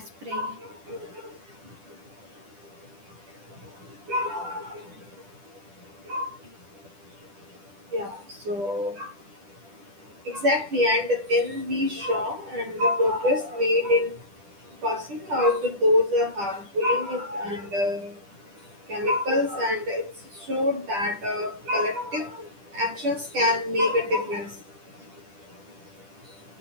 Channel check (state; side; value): late; left; 10 ms